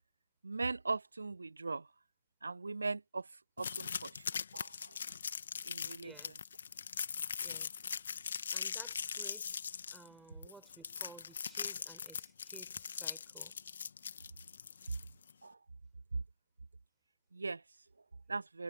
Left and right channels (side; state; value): both; inverted; correlation -0.84